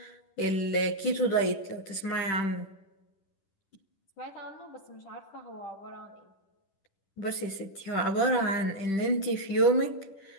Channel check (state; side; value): late; right; 10 ms